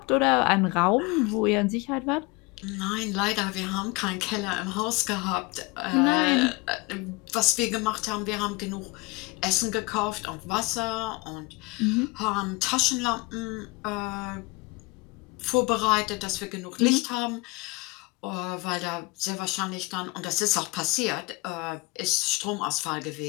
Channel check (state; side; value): quieter; right; 25.2 dB